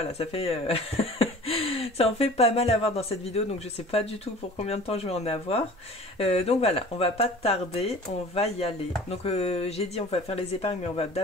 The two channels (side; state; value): both; normal; correlation 0.44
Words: ça fait ça en fait pas mal à voir dans cette vidéo, donc je sais pas du tout pour combien de temps je vais en avoir. Donc voilà, on va pas tarder, on va y aller. Donc j'ai dit on va faire les épargnes, mais on va